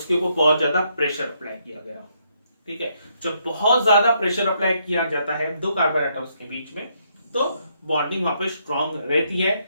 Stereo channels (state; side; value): inverted; both; correlation -0.74